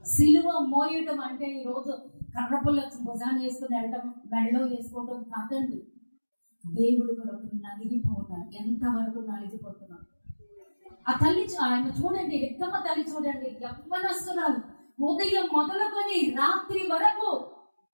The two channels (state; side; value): inverted; both; correlation -1.00